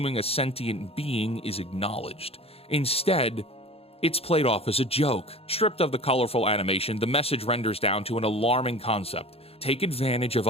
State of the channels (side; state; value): right; late; 0.28 ms